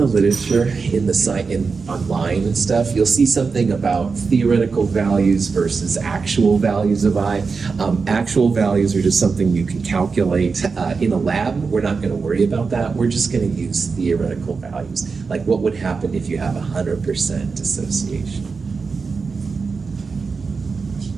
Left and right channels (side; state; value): left; quieter; 4.8 dB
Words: literature, in the site, online and stuff, you'll see something about theoretical values versus actual values of I. Actual values are just something you can calculate in a lab. We're not going to worry about that. We're just going to use theoretical values, like what would happen if you have 100% dissociation.